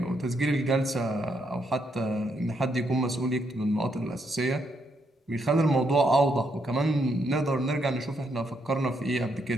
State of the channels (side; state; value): both; normal; correlation 0.76